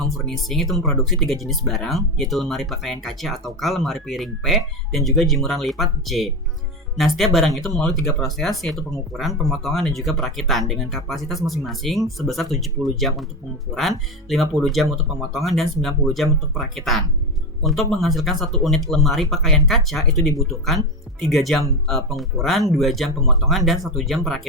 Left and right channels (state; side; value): normal; both; correlation 0.16